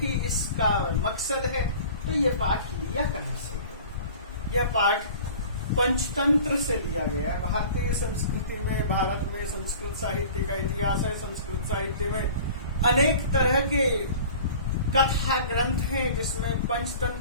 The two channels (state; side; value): inverted; both; correlation -0.43